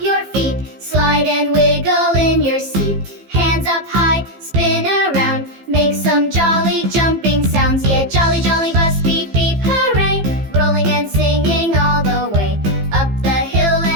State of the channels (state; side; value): late; left; 15 ms